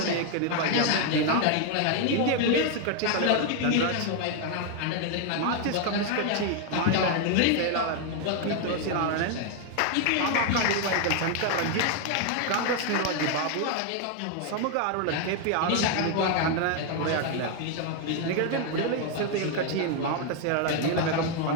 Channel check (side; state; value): both; different; correlation 0.00